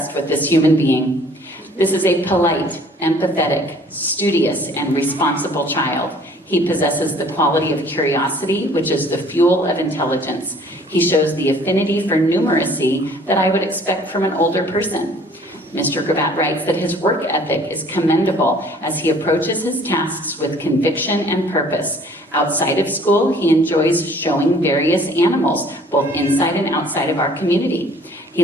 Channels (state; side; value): normal; both; correlation 0.54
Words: with this human being. This is a polite, empathetic, studious, and responsible child. He possesses the quality of curiosity, which is the fuel of intelligence. He shows the affinity for numeracy that I would expect from an older person. Mr. Gravatt writes that his work ethic is commendable as he approaches his tasks with conviction and purpose. Outside of school, he enjoys showing various animals, both inside and outside of our community. He